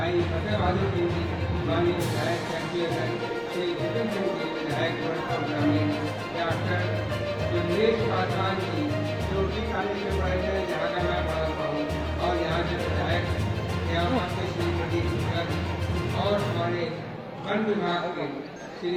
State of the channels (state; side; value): identical; both; correlation 1.00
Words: फतेह बहादुर सिंह जी, माननीय विधायक कैंपियर श्री जितेंद्र सिंह जी, विधायक गोरखपुर ग्रामीण, डॉक्टर जमनेश पासवान जी जो उसी कॉलेज में पढ़े थे जहाँ का मैं पढ़ा हुआ हूँ और यहाँ के विधायक हैं, यहाँ से श्री प्रदीप शुक्ला जी और हमारे वन विभाग के श्री